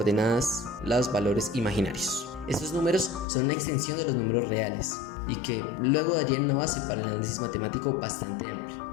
los valores imaginarios. Estos números son una extensión de los números reales y que luego darían una base para el análisis matemático bastante amplio.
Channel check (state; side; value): drops out; right; at 3.2 s